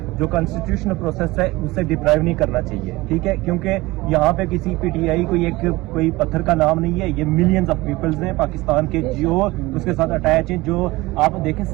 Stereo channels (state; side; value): quieter; left; 20.5 dB